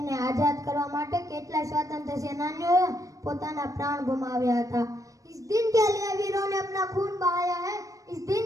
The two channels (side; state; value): left; late; 0.16 ms